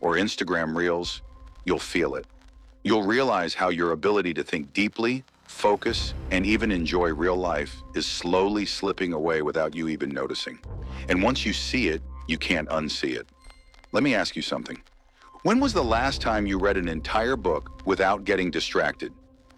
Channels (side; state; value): both; identical; correlation 1.00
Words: or Instagram Reels, you'll feel it. You'll realize how your ability to think deeply, focus, and even enjoy real life is slowly slipping away without you even noticing. And once you see it, you can't unsee it. Let me ask you something. When was the last time you read an entire book without getting distracted?